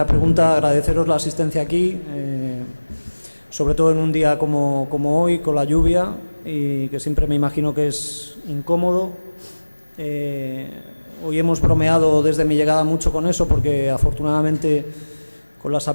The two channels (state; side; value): inverted; both; correlation -1.00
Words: pregunta, agradeceros la asistencia aquí, sobre todo en un día como hoy, con la lluvia, y que siempre me imagino que es incómodo. Hoy hemos bromeado desde mi llegada mucho con eso, porque afortunadamente con las